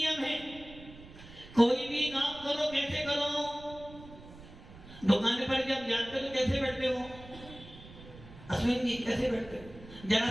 है, कोई भी काम करो कैसे करो? दुकान पर जब जाते हो तो कैसे बैठते हो? अश्विन जी कैसे बैठते हो? जरा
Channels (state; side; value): noise; right; rumble, 18 dB below the sound